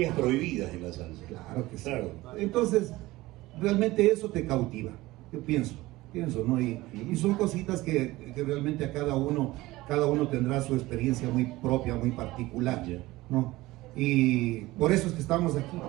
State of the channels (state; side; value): quieter; left; 18.8 dB